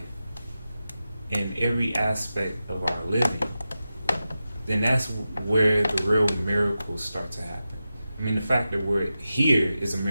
in every aspect of our living, then that's where the real miracles start to happen. I mean, the fact that we're here is a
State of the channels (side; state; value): both; inverted; correlation -0.92